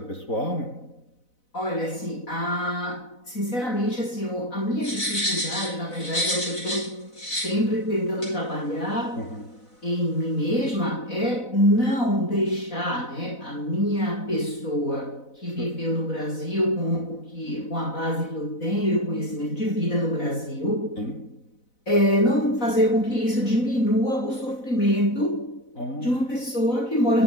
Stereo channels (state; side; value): late; right; 4.0 ms